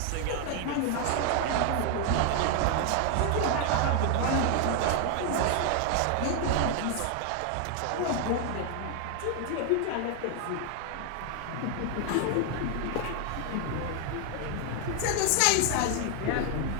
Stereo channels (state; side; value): different; both; correlation 0.01